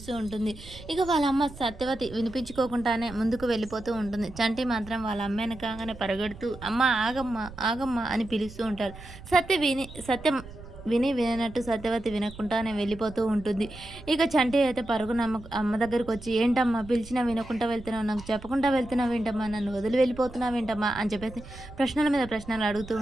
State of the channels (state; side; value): noise; right; rumble, 16 dB below the sound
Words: ఉంటుంది. ఇక వాళ్ళ అమ్మ సత్యవతి వినిపించుకోకుండానే ముందుకు వెళ్ళిపోతూ ఉంటుంది. చంటి మాత్రం వాళ్ళ అమ్మ వెనకాగానే పరిగెడుతూ అమ్మ ఆగమ్మ, ఆగమ్మ అని పిలుస్తూ ఉంటాడు. సత్యం విననట్టు సత్యవతి వినకుండానే వెళ్ళిపోతూ ఉంటుంది. ఇక చంటి అయితే పరుగున అమ్మ దగ్గరికి వచ్చి ఏంటమ్మా పిలిచినా వినకుండా వెళ్తున్నావు, నాకు చెప్పకుండా వెళ్తున్నావేంటమ్మా, నన్ను వదిలి వెళ్ళిపోతున్నావేంటమ్మా అని చెప్పేసి ప్రశ్నల మీద ప్రశ్నలు అడుగుతూ